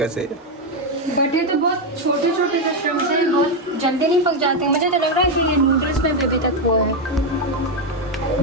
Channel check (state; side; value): normal; both; correlation 0.05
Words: बट ये तो बहुत छोटे छोटे से श्रिम्प्स हैं, बहुत जल्दी नहीं पक जाते। मुझे तो लग रहा है कि ये नूडल्स में भी अभी तक वो है।